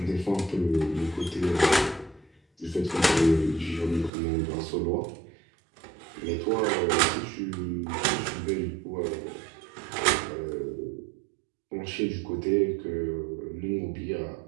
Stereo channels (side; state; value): left; drops out; at 4.1 s